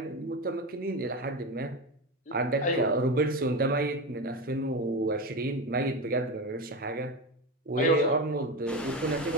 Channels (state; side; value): normal; both; correlation 0.20